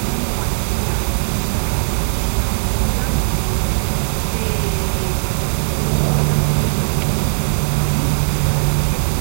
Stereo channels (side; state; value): left; silent; digital silence